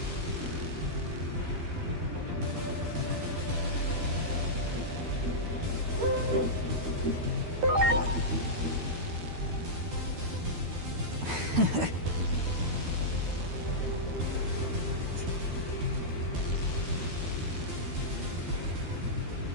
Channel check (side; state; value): left; late; 12 ms